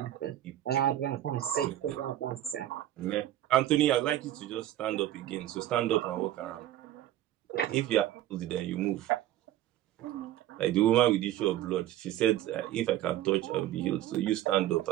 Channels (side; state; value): left; quieter; 13.2 dB